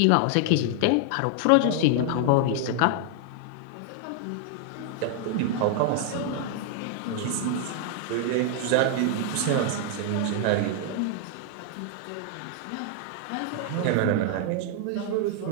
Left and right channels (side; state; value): both; different; correlation 0.00